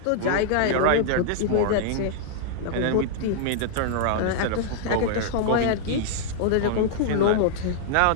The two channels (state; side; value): different; both; correlation -0.01